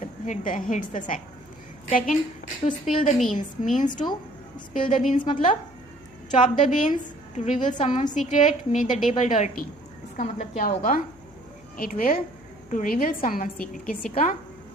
hits the sack. Second, to spill the beans, means to spill the beans मतलब chop the beans, to reveal someone secret, make the table dirty. इसका मतलब क्या होगा? It will to reveal someone secret, किसी का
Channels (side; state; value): left; noise; hum, 27 dB below the sound